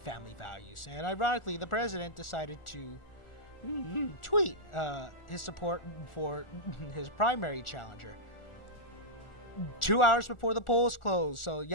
values. And ironically, the president decided to tweet his support for his primary challenger 2 hours before the polls close. So,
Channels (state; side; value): late; right; 1.4 ms